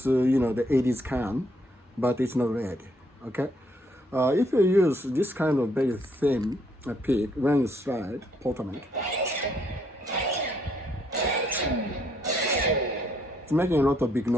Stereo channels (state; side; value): normal; both; correlation 0.70